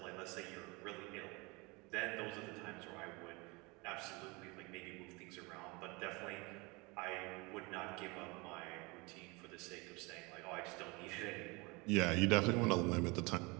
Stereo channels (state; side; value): quieter; left; 26.4 dB